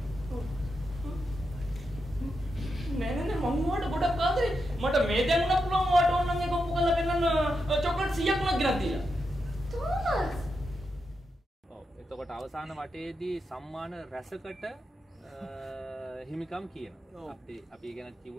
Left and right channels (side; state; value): both; normal; correlation 0.86